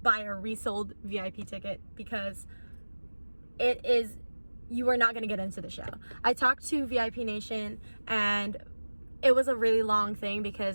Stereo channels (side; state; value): both; inverted; correlation -1.00